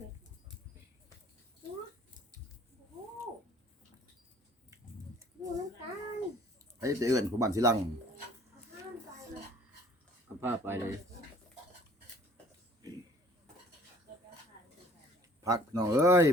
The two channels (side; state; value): both; normal; correlation 0.55